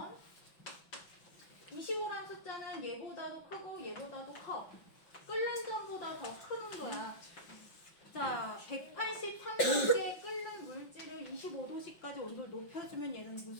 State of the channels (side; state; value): right; late; 5.4 ms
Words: 25란 숫자는 얘보다도 크고 얘보다도 커. 끓는 점보다 더 큰 온도야. 자, 183도씨에 끓는 물질을 25도씨까지 온도를 높여주면 얘는